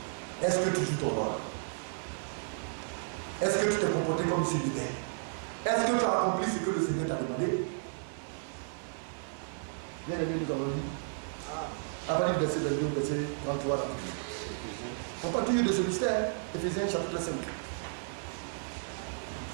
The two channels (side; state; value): left; silent; 56 dB below the other